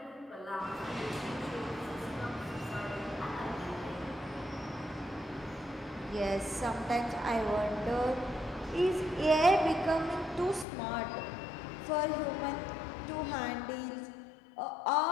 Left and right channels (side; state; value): right; drops out; at 10.7 s